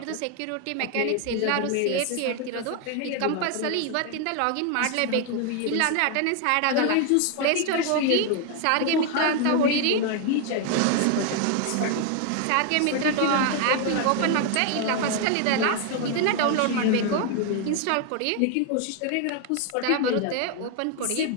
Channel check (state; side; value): different; both; correlation 0.01